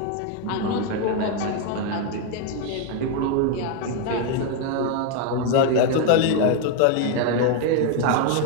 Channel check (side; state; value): both; different; correlation 0.01